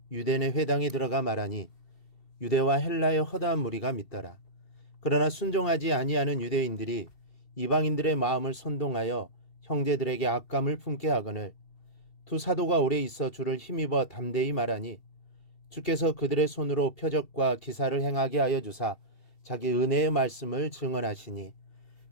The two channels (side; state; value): right; late; 2.7 ms